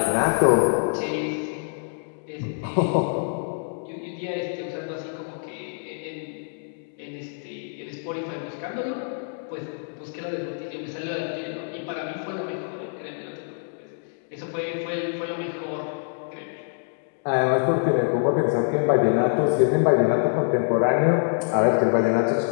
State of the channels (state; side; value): silent; right; digital silence